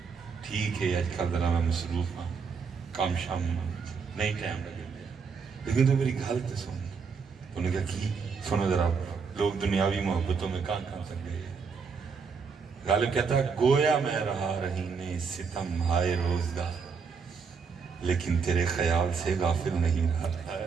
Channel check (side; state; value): left; quieter; 5.6 dB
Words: ٹھیک ہے آج کل ذرا میں مصروف ہوں، کام شام نہیں ٹائم لگے گیا، لیکن تو میری گھل تو سن، انہوں نے کہا کی سنو ذرا، لوگ دنیاوی محبتوں میں کہاں تک گئے۔ غالب کہتا ہے گویا میں رہا رہینے ستم ہائے روزگار، لیکن تیرے خیال سے غافل نہیں رہا۔